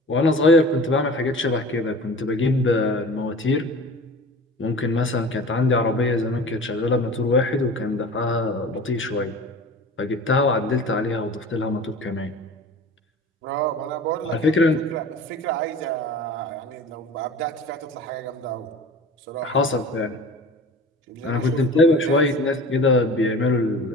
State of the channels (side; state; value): both; normal; correlation 0.39